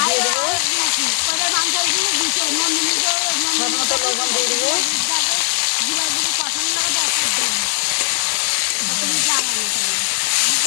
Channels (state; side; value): silent; right; 66 dB below the other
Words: দিয়ে দেবো, স্বাদ মতো লবণ দিয়ে দেবো।